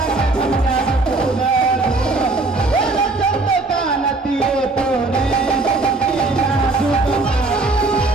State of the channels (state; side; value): quieter; left; 3.3 dB